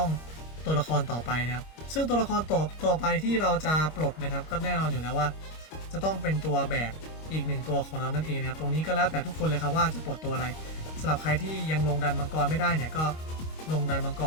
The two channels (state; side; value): late; right; 25 ms